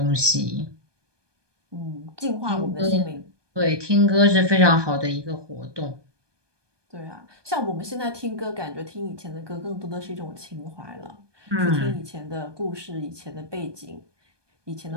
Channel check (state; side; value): late; left; 1.2 ms